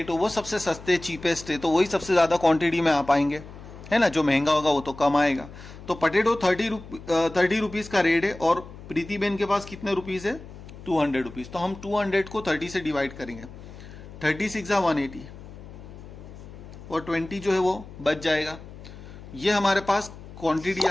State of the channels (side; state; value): left; noise; hum, 16 dB below the sound